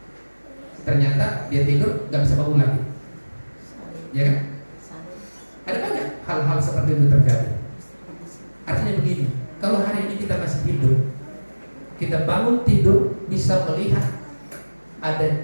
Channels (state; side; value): inverted; both; correlation -1.00